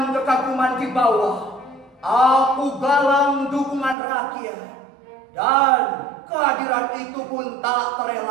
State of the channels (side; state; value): left; drops out; at 4.0 s